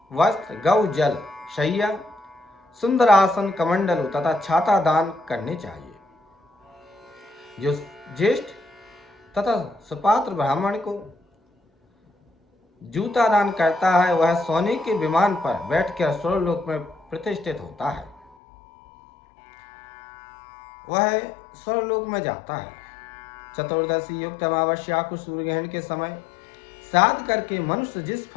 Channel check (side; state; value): right; drops out; at 18.3 s